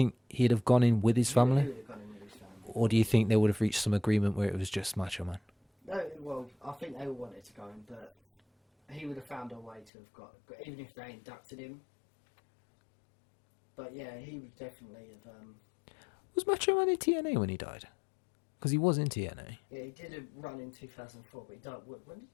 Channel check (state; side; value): drops out; right; at 9.9 s